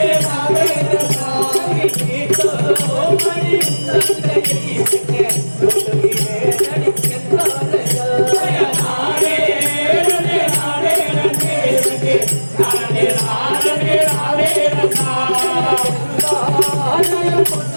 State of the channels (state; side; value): inverted; both; correlation -1.00